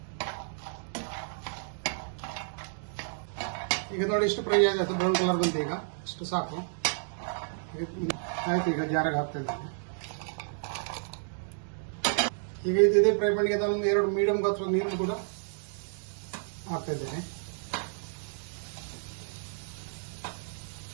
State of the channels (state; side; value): silent; left; digital silence